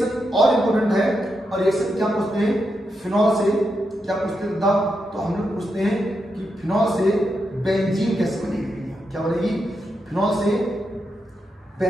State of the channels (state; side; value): normal; both; correlation 0.84